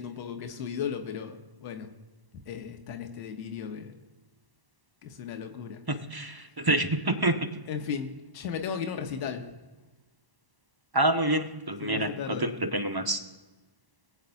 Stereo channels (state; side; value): late; left; 1.0 ms